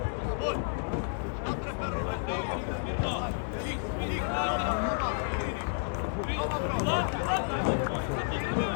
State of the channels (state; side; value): silent; right; digital silence